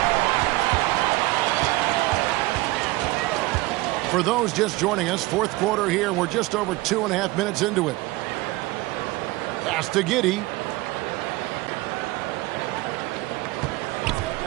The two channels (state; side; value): quieter; left; 20.0 dB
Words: For those just joining us, fourth quarter here. We're just over 2.5 minutes into it. Pass to Giddey.